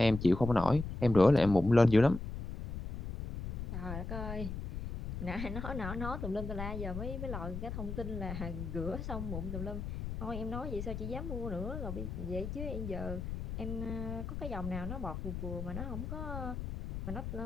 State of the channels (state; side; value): noise; left; rumble, 6 dB below the sound